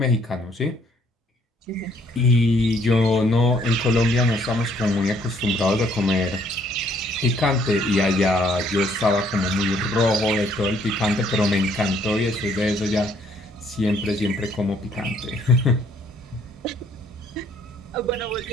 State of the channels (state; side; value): normal; both; correlation 0.64